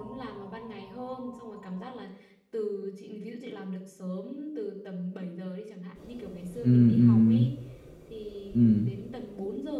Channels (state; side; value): identical; both; correlation 1.00